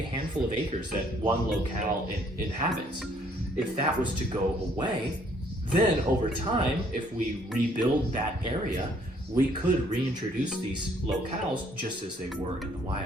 a handful of acres that one locale inhabits. If that was to go away, then over time, if we rebuild that area, we could reintroduce these locales just as they were in the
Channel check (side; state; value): both; normal; correlation 0.64